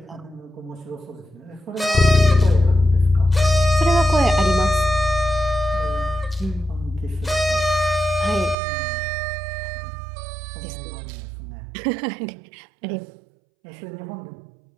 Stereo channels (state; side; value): drops out; left; at 8.6 s